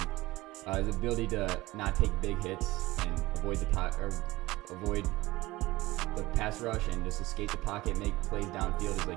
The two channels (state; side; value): quieter; left; 19.1 dB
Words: His ability to not take big hits and avoid the pass rush and just escape the pocket, make plays downfield is